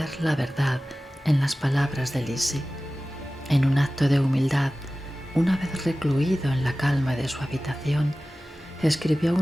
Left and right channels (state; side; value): normal; both; correlation 0.96